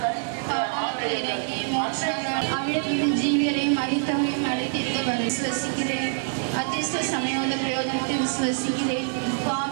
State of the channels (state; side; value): silent; left; digital silence